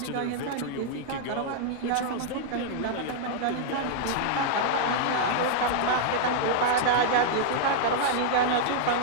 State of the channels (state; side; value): different; both; correlation -0.01